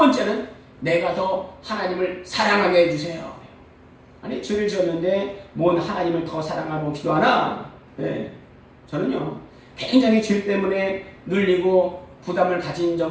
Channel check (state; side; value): identical; both; correlation 1.00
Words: 내가 더 하나님을 사랑하게 해주세요. 죄를 지었는데 뭔 하나님을 더 사랑하고 기도하나? 예, 저는요 굉장히 죄 때문에 눌리고 부담을 가진